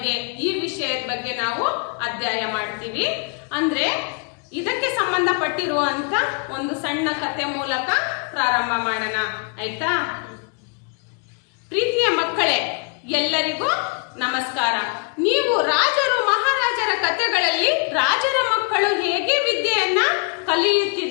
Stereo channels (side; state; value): right; quieter; 36.2 dB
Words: ಈ ವಿಷಯದ ಬಗ್ಗೆ ನಾವು ಅಧ್ಯಯನ ಮಾಡ್ತೀವಿ. ಅಂದ್ರೆ ಇದಕ್ಕೆ ಸಂಬಂಧಪಟ್ಟಿರುವಂತ ಒಂದು ಸಣ್ಣ ಕಥೆ ಮೂಲಕ ಪ್ರಾರಂಭ ಮಾಡೋಣ, ಆಯ್ತಾ? ಪ್ರೀತಿಯ ಮಕ್ಕಳೇ, ಎಲ್ಲರಿಗೂ ನಮಸ್ಕಾರ. ನೀವು ರಾಜರು ಮಹಾರಾಜರ ಕಥೆಗಳಲ್ಲಿ ರಾಜರ ಮಕ್ಕಳು ಹೇಗೆ ವಿದ್ಯೆಯನ್ನ